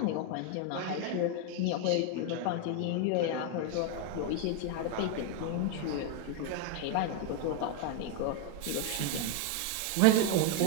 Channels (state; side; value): different; both; correlation 0.01